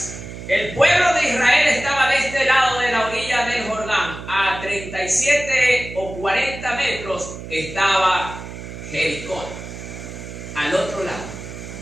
el pueblo de Israel estaba de este lado de la orilla del Jordán, a 37 o 40 metros estaba Jericó, al otro lado.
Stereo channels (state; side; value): noise; right; hum, 11 dB below the sound